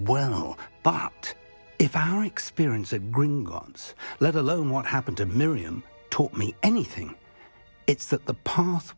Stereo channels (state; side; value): inverted; both; correlation -1.00